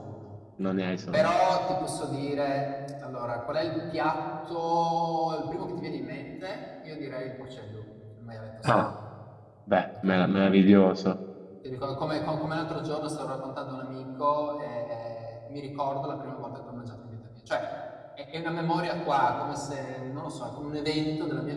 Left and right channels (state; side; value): identical; both; correlation 1.00